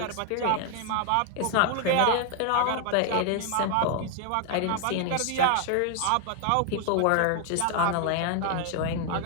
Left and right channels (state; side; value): different; both; correlation 0.00